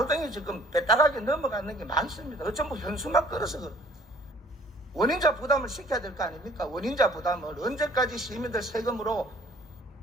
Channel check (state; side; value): normal; both; correlation 0.55